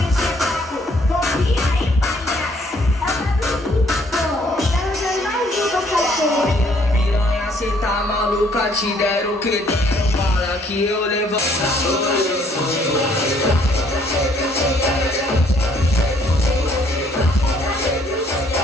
Cê tá maluca, te deram que deram bala que eu levanto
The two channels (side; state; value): both; normal; correlation 0.65